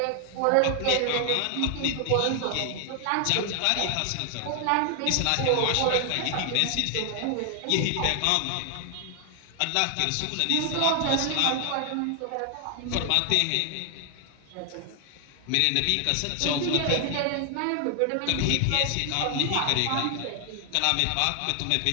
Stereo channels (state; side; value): different; both; correlation 0.00